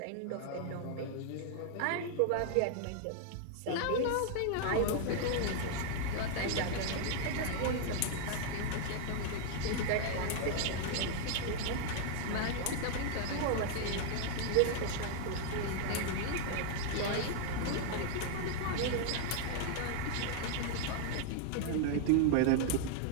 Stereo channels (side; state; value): both; different; correlation 0.00